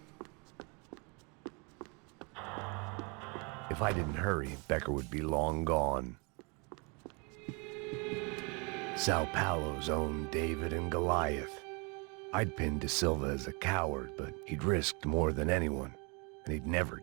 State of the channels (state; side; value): quieter; left; 32.0 dB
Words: If I didn't hurry, Becker would be long gone. Sao Paulo's own David and Goliath. I'd pinned De Silva as a coward, but he'd risked more than anyone, and he'd never